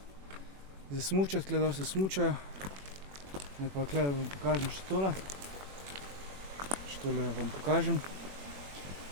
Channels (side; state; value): left; late; 21 ms